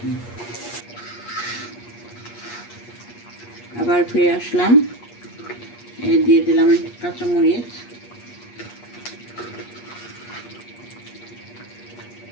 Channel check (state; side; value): late; right; 8.4 ms